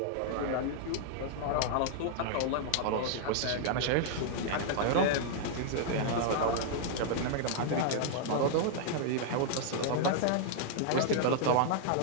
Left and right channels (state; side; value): different; both; correlation -0.01